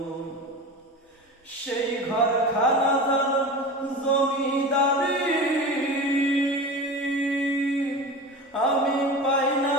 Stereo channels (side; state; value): both; normal; correlation 0.30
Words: সেই ঘর খানা জমিদারি আমি পাই না